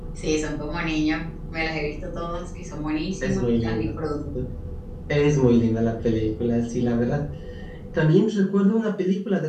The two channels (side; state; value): both; identical; correlation 1.00